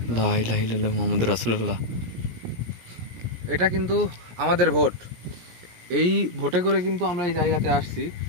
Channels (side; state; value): left; late; 17 ms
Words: লা ইলাহা ইল্লাল্লাহ মুহাম্মাদুর রাসূলুল্লাহ। এটা কিন্তু আমাদের ভোট। এই ভোটে করে কিন্তু আমরা এই জায়গাতে আসছি।